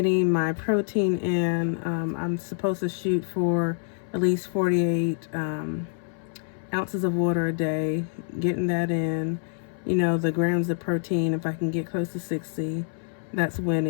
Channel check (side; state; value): right; silent; 61 dB below the other